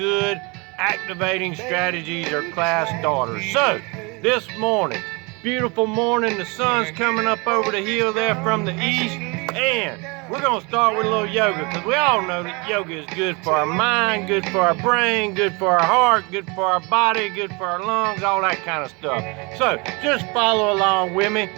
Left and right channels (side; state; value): left; quieter; 28.7 dB